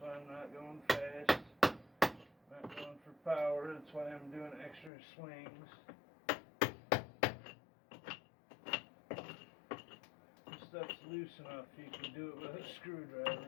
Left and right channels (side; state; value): right; drops out; at 4.9 s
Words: I'm not going fast, not going for power. That's why I'm doing extra swings. Stuff's loose enough you can do it with a